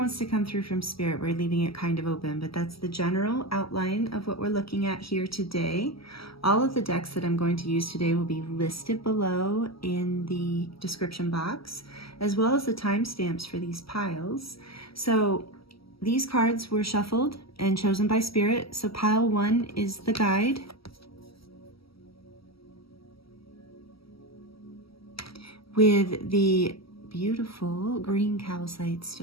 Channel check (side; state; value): right; late; 0.75 ms